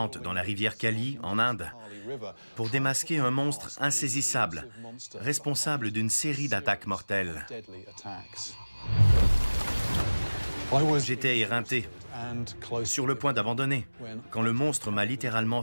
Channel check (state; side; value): inverted; both; correlation -1.00